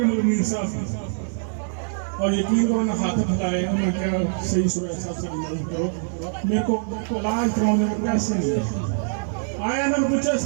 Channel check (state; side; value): silent; left; digital silence